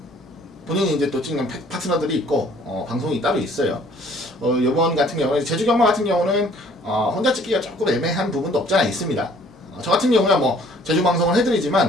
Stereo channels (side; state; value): both; normal; correlation 0.57